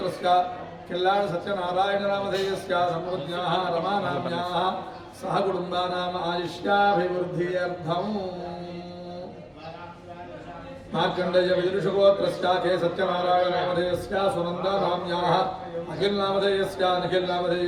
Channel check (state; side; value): identical; both; correlation 1.00